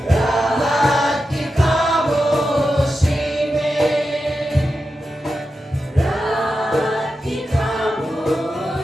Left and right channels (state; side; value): normal; both; correlation 0.90